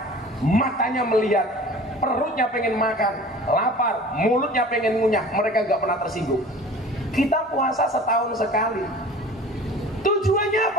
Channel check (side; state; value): both; normal; correlation 0.43